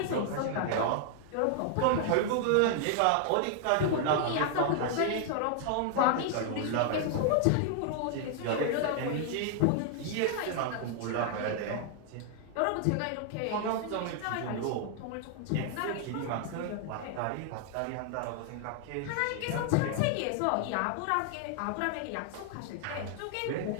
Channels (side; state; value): both; different; correlation 0.00